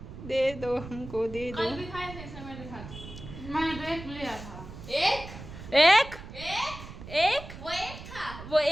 दे दो हमको, दे दो। कल भी खाए थे समय दिखा। मैंने तो एक लिया था। एक एक एक एक वो एक था। वो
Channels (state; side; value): noise; right; rumble, 13 dB below the sound